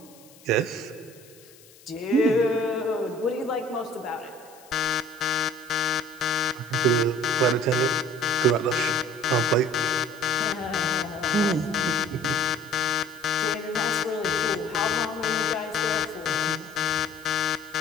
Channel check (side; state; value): left; noise; hiss, 24 dB below the sound